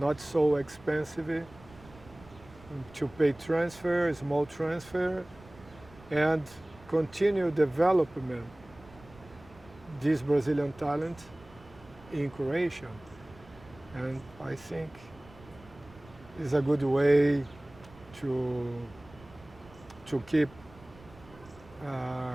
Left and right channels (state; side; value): noise; right; rumble, 22 dB below the sound